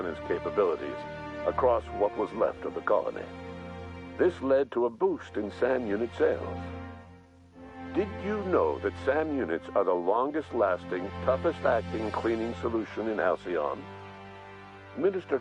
capabilities across what was left of the colony. This led to a boost in SAM unit sales. Did you know that SAM units are the longest-lasting, toughest-acting cleaning solution in Halcyon? Minister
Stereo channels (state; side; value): identical; both; correlation 1.00